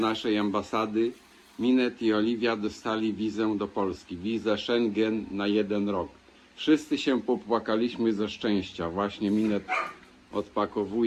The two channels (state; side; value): identical; both; correlation 1.00